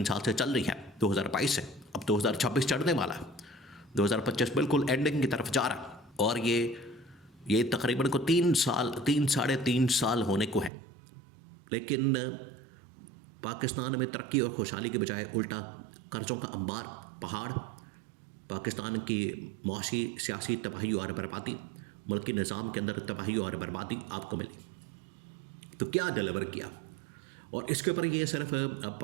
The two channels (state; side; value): drops out; left; at 10.7 s